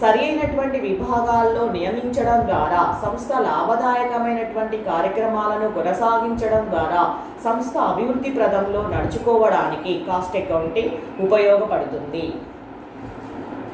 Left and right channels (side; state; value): both; identical; correlation 1.00